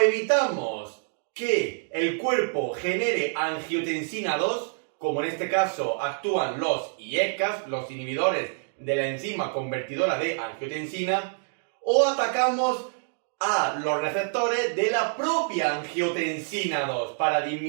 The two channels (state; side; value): silent; left; digital silence